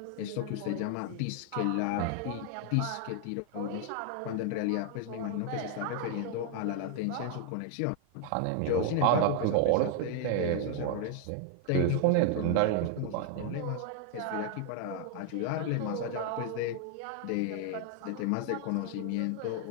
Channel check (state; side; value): different; both; correlation 0.00